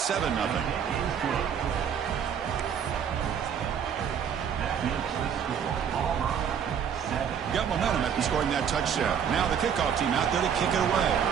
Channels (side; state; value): left; quieter; 7.9 dB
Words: Got momentum after scoring that touchdown. Now the kickoff team out there to kick it away.